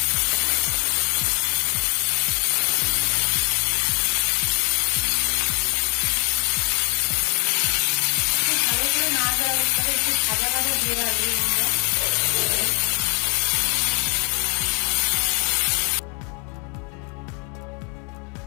অবস্থায় একটু ভাজা ভাজা দিয়ে রাখবো আমরা।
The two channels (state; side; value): quieter; right; 36.1 dB